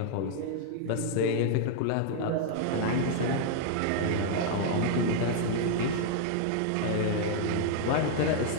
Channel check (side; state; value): both; different; correlation 0.00